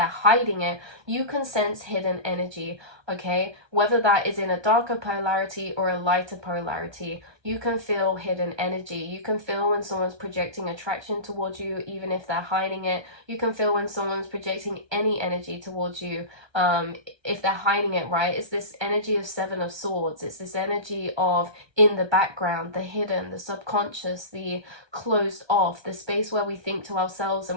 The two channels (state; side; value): late; left; 1.2 ms